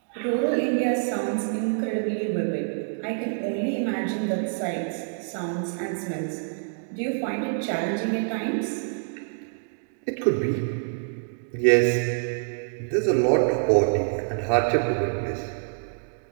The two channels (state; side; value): silent; left; digital silence